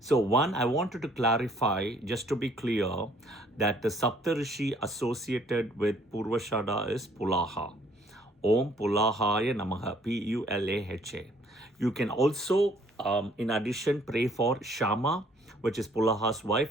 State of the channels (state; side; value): normal; both; correlation 0.61